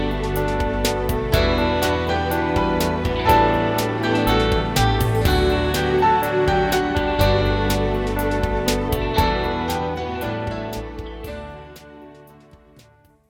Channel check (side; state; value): both; identical; correlation 1.00